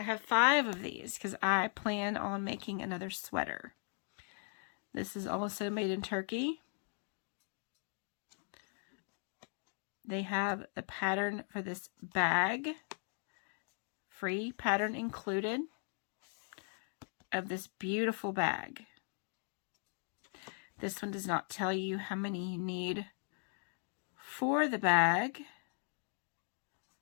have 5 of these because I plan on making another sweater. This is also made in Turkey. They have the pattern for this bag, free pattern included, of this beautiful bag. This one does not tell you how many you need for the bag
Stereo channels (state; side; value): silent; right; 52 dB below the other